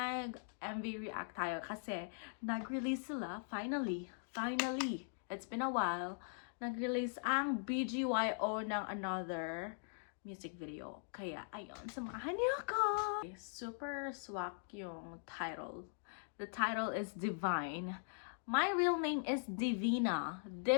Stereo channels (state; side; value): silent; right; digital silence